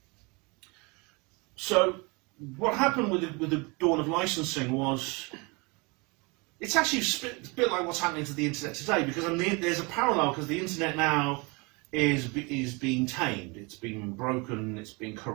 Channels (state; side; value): quieter; left; 28.3 dB